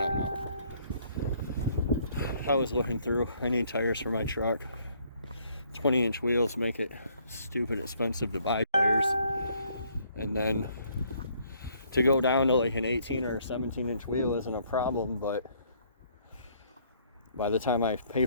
don't know. I was looking through. I need tires for my truck. 20-inch wheels make it stupid expensive to buy tires, and then to go down to like an 18 or 17-inch wheel isn't a problem, but by the time I pay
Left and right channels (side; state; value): both; inverted; correlation -0.65